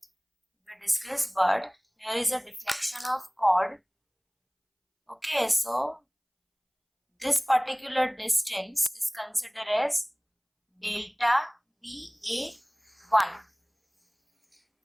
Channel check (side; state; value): both; identical; correlation 1.00